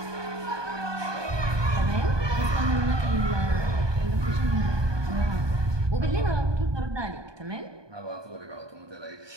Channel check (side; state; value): left; late; 1.2 ms